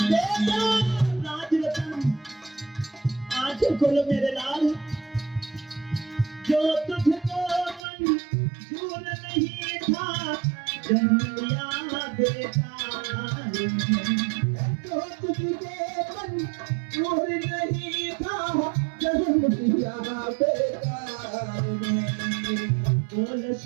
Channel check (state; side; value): drops out; left; at 7.8 s